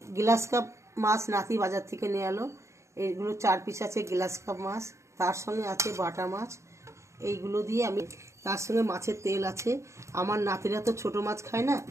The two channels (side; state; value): left; late; 0.14 ms